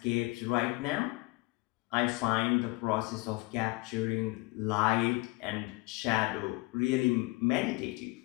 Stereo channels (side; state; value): right; quieter; 23.7 dB